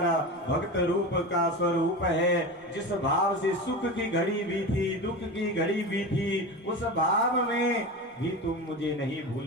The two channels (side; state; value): both; normal; correlation 0.26